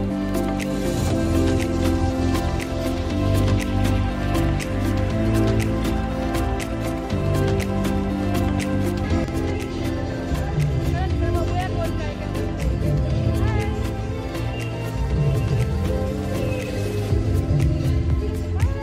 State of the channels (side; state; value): both; identical; correlation 1.00